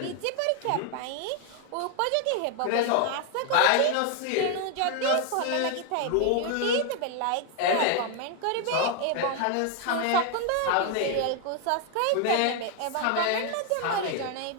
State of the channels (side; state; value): both; different; correlation 0.00